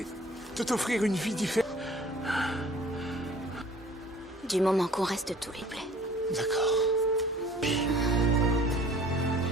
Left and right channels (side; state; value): both; normal; correlation 0.51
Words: de t'offrir une vie différente. Du moment qu'on reste tous les plaies. D'accord.